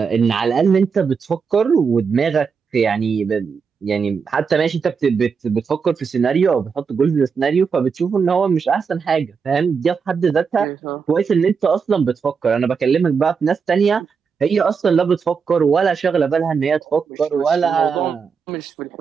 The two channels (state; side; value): quieter; left; 5.8 dB